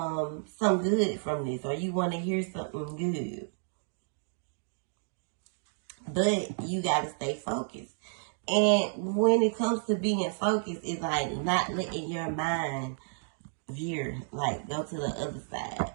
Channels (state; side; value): silent; left; digital silence